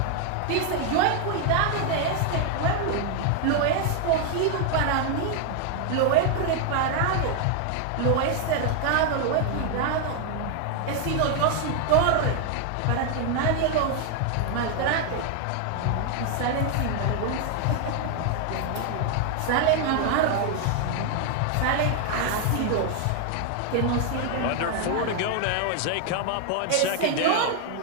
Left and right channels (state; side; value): different; both; correlation 0.00